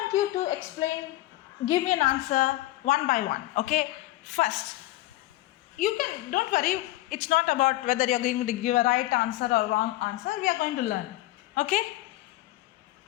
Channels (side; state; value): right; quieter; 17.1 dB